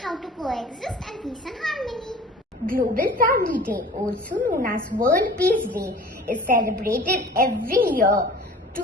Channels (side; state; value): both; normal; correlation 0.44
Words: how to coexist in peace and harmony. Global Family Day, also known as World Peace Day, is celebrated every year